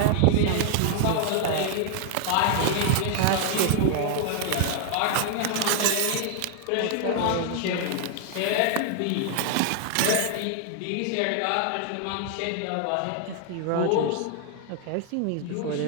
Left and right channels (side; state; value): both; different; correlation 0.00